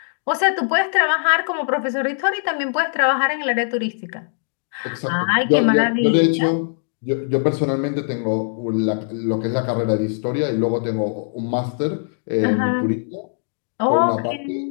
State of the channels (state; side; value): silent; right; digital silence